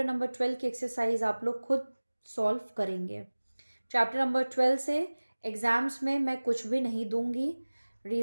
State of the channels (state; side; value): inverted; both; correlation -1.00